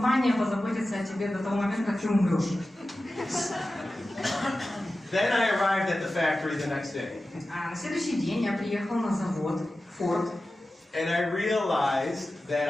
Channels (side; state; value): both; normal; correlation 0.94